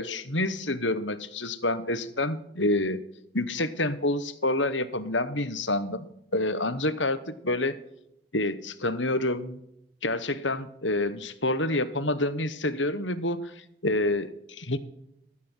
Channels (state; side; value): normal; both; correlation 0.02